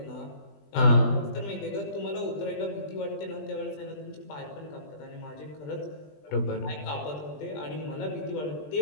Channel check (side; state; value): right; late; 20 ms